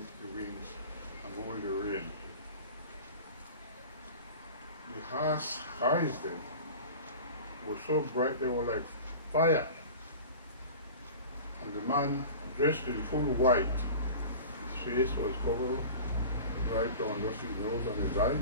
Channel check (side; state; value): both; inverted; correlation -0.36